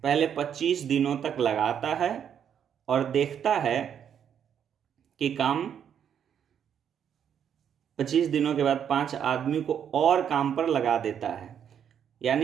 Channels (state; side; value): quieter; left; 8.6 dB